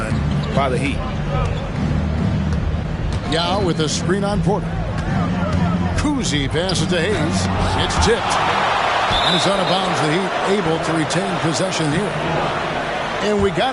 by the Heat. Yao with a screen on Porter. Kuzi passes to Hayes. It's tipped. And it's out of bounds. The Heat able to retain possession here. And we got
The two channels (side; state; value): both; identical; correlation 1.00